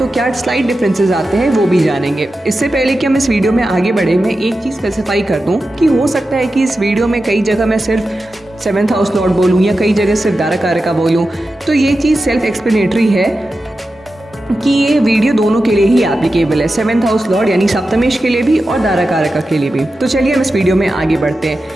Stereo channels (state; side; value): normal; both; correlation 0.92